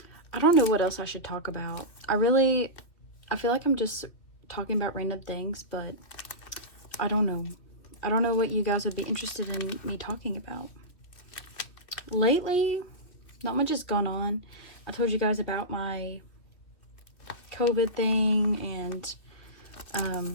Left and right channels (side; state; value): right; late; 2.4 ms